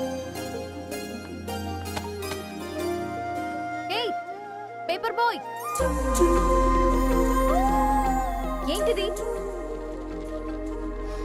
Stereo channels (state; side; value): identical; both; correlation 1.00